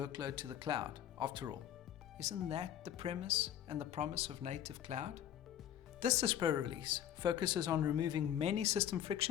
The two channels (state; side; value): quieter; right; 10.6 dB